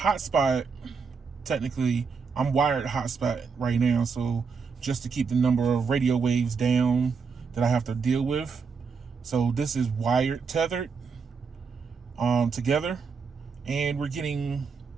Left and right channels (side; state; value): left; quieter; 5.4 dB